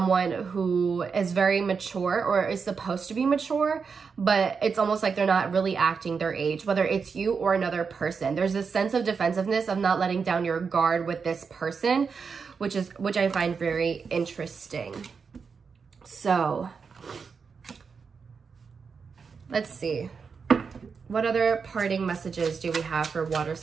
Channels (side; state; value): left; quieter; 5.6 dB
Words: who is very mature or is supposed to be mature, but it's almost like they're not really acting their age, whether it's you or another person. There's this sense of defensiveness of not letting down your guard with this person, which I find very interesting. So let's see. What other parting messages do we have for water